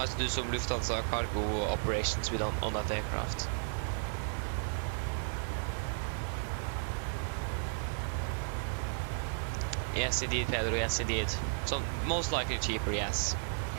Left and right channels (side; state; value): left; silent; digital silence